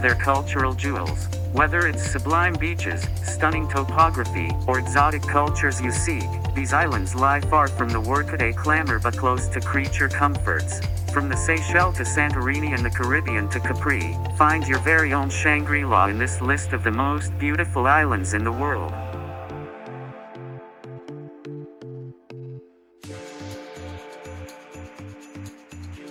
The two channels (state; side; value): identical; both; correlation 1.00